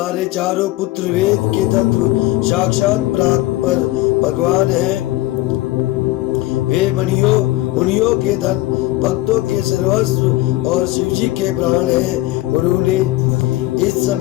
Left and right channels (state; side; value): quieter; right; 17.7 dB